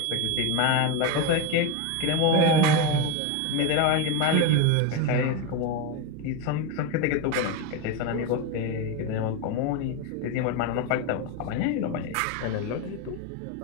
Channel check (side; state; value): both; different; correlation 0.04